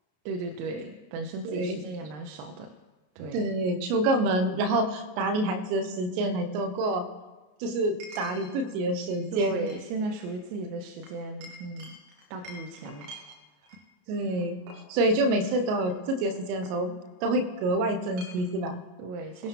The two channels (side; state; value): left; late; 33 ms